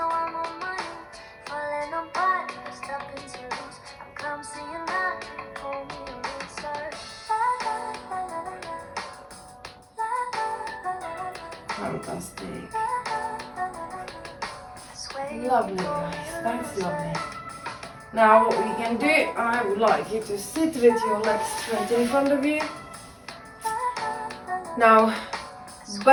Fantastic. Lovely guys, that's lovely. Now what we can do, I would like you to sit with your legs straight in front of you. Now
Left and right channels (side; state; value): both; identical; correlation 1.00